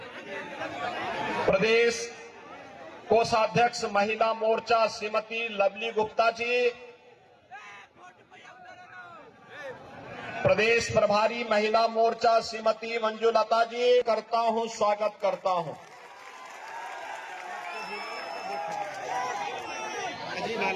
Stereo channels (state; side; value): identical; both; correlation 1.00